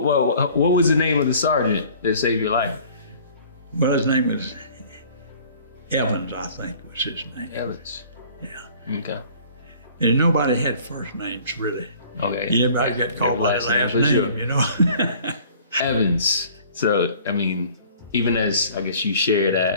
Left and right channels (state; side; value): inverted; both; correlation -0.51